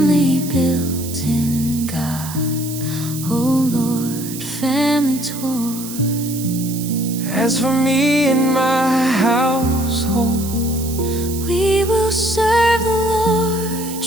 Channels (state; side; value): noise; right; hiss, 11 dB below the sound